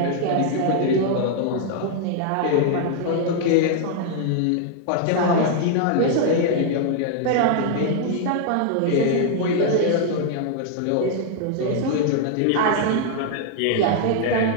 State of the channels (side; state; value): both; different; correlation 0.00